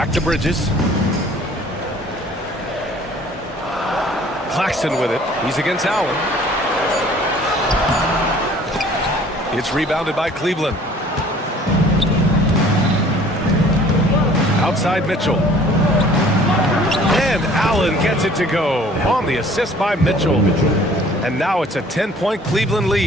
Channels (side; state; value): both; normal; correlation 0.53